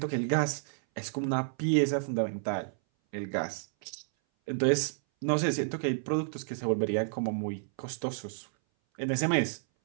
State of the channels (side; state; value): left; silent; 57 dB below the other